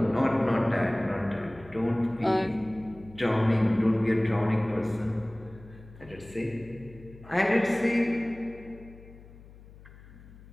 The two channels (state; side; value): noise; left; hum, 20 dB below the sound